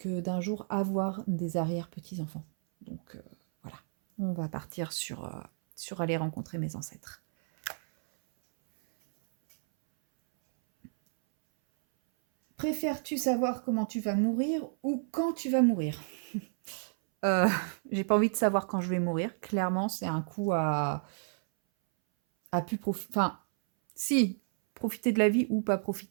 d'un jour avoir des arrière-petits-enfants. Donc voilà, on va partir sur aller rencontrer mes ancêtres. Préfères-tu savoir comment tu vas mourir ou quand tu vas mourir? Euh, j'ai pas envie de savoir quand je vais mourir. Clairement, c'est un coup à plus profiter. Enfin, si, profiter de la vie ou pas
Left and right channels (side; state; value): left; silent; 57 dB below the other